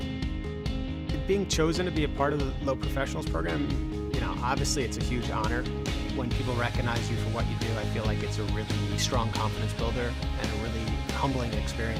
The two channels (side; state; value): both; identical; correlation 1.00